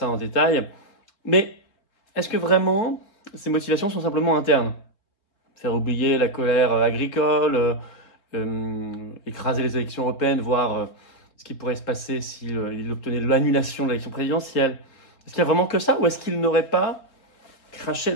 en détail. Mais est-ce que vraiment ces motivations sont simplement internes? Faire oublier la colère agricole, écraser les élections européennes, voir ce qui pourrait se passer s'il obtenait l'annulation de l'élection présidentielle. Est-ce qu'il y a vraiment que ça, ou est-ce qu'il n'aurait pas craché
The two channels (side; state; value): right; late; 3.9 ms